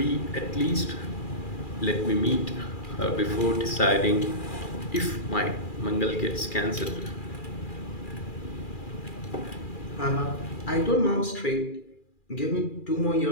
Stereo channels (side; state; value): right; late; 2.4 ms